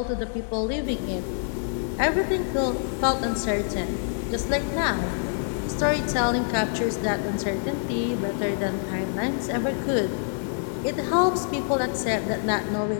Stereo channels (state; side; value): silent; right; 59 dB below the other